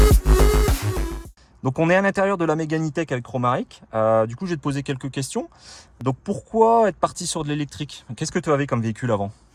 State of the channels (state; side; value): identical; both; correlation 1.00